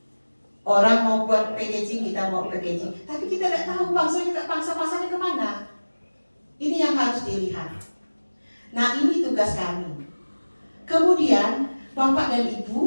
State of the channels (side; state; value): both; inverted; correlation -1.00